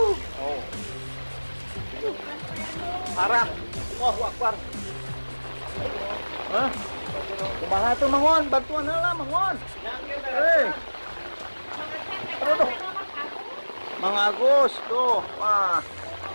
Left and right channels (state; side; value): inverted; both; correlation -1.00